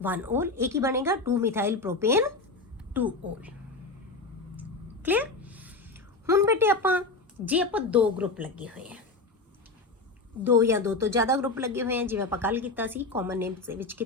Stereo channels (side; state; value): right; quieter; 3.4 dB